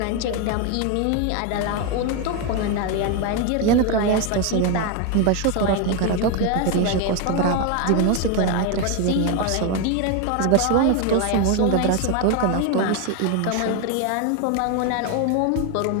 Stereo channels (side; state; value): both; different; correlation 0.02